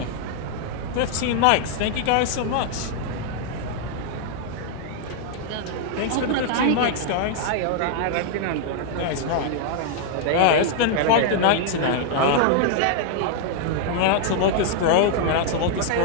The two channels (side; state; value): both; different; correlation 0.00